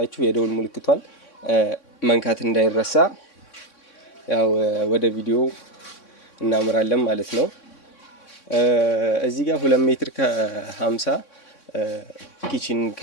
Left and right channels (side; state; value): right; late; 3.6 ms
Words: የደውል ምልክቷን መንካት እንዳይረሳ። ያው ወደ ቪዲዮ እናምራለን ማለት ነው። እዚህ ጋር 2 ሜትር ከ50 ኪችን